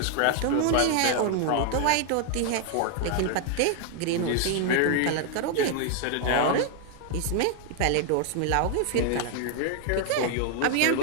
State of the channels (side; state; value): both; different; correlation 0.00